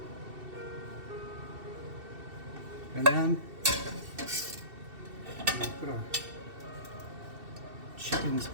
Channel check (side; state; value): left; late; 2.7 ms